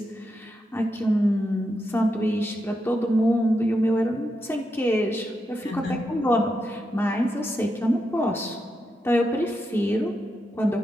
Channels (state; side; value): normal; both; correlation 0.85